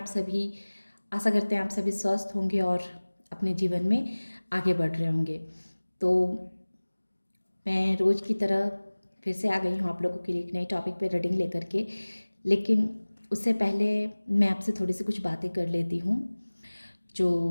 सभी। आशा करते हैं आप सभी स्वस्थ होंगे और अपने जीवन में आगे बढ़ रहे होंगे। तो मैं रोज़ की तरह फिर से आ गई हूँ आप लोगों के लिए एक नई टॉपिक पे रीडिंग लेकर के। लेकिन उससे पहले मैं आपसे थोड़ी सी कुछ बातें कर लेती हूँ जो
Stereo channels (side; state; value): both; inverted; correlation -1.00